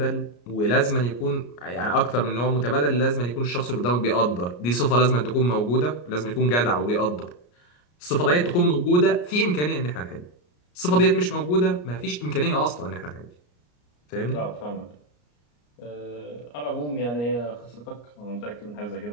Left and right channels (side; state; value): right; late; 34 ms